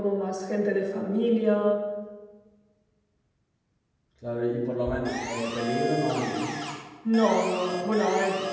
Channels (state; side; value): identical; both; correlation 1.00